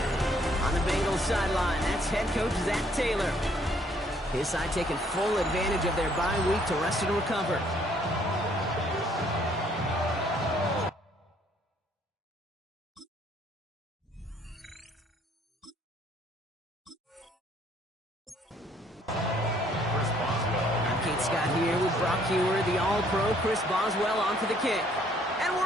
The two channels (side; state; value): both; normal; correlation 0.64